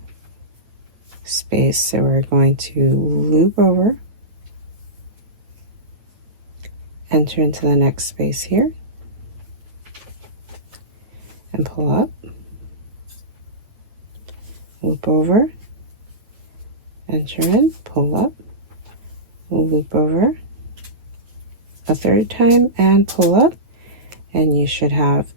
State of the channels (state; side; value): late; left; 8.7 ms